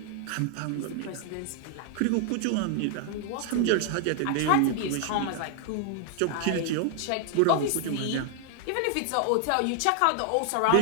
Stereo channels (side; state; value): both; different; correlation 0.00